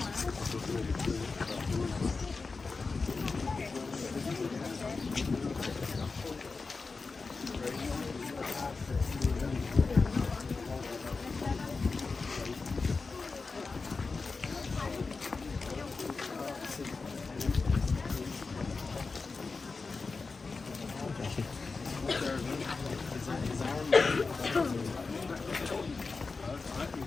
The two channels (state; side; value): quieter; right; 4.2 dB